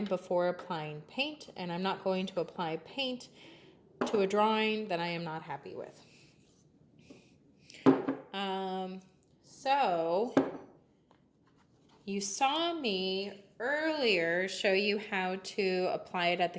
before applying paint, and I'm not going to apply paint to a drawing that I am not happy with. So you saw me earlier show you how to apply it at the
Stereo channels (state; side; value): identical; both; correlation 1.00